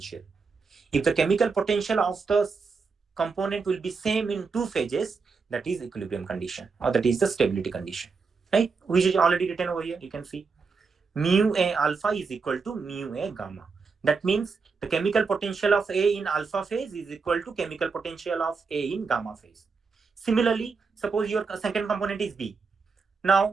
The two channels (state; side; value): quieter; left; 4.9 dB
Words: If the chemical potential of the component will be same in two phases, that is equilibrium condition, or that is the stability condition, right? Which is already written over here. You can see mu A alpha is equal to mu A gamma. That means the chemical potential of A in alpha phase is equal to chemical potential of A in gamma phase. Similarly, suppose your second component is B.